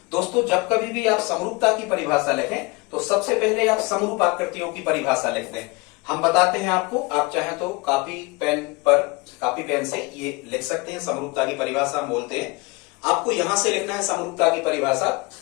दोस्तों जब कभी भी आप समरूपता की परिभाषा लिखें तो सबसे पहले आप समरूप आकृतियों की परिभाषा लिख दें। हम बताते हैं आपको, आप चाहें तो कापी पेन से ये लिख सकते हैं। समरूपता की परिभाषा हम बोलते हैं, आपको यहां से लिखना है समरूपता की परिभाषा।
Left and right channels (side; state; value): right; quieter; 25.9 dB